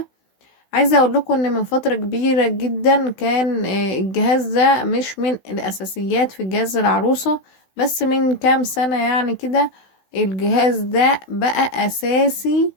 عايزة اقول لكم ان من فترة كبيرة جدا كان الجهاز ده مش من الأساسيات في جهاز العروسة، بس من كام سنة يعني كده الجهاز ده بقى أساسي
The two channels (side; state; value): right; late; 16 ms